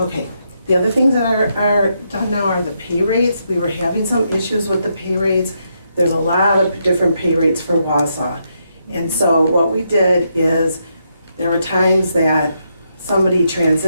the other things that are done now are the pay rates. We were having some issues with the pay rates. There's a lot of different pay rates for Wausau. And so what we did is there were times that somebody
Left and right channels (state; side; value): inverted; both; correlation -0.79